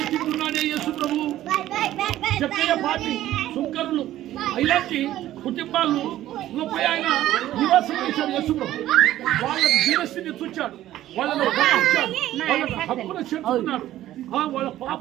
తింటున్నాడే యేసు ప్రభు. చెప్పే పార్టీ సుంకరులు ఇలాంటి కుటుంబాలు పోయి ఆయన నివాసం చేశాడు యేసు ప్రభు. వాళ్ళ జీవస్థితిని చూచాడు, వాళ్ళను గమనించాడు, వాళ్ళ హక్కును చేర్చుకున్నాడు, వాళ్ళ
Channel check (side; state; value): left; quieter; 13.7 dB